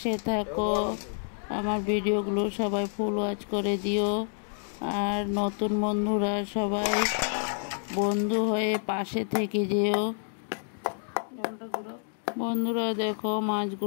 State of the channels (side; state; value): right; silent; 59 dB below the other